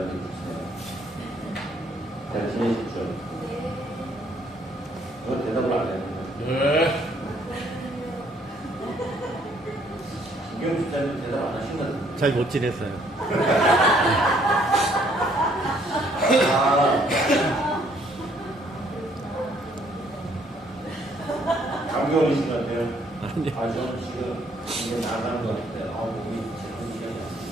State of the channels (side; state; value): both; normal; correlation 0.65